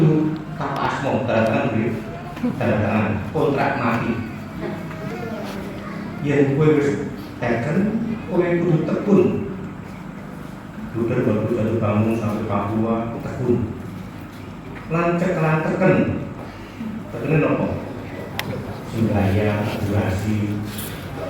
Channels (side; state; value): both; identical; correlation 1.00